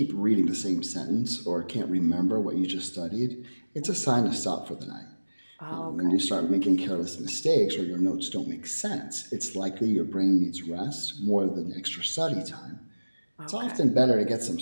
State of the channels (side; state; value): both; inverted; correlation -1.00